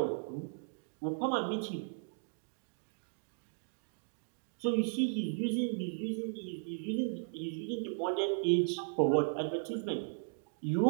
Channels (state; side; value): silent; left; digital silence